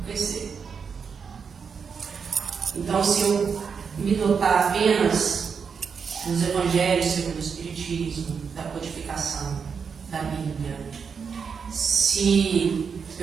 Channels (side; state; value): left; quieter; 6.1 dB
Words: crescer. Então, se eu me dotar apenas dos evangelhos segundo o Espiritismo, da codificação, da Bíblia, se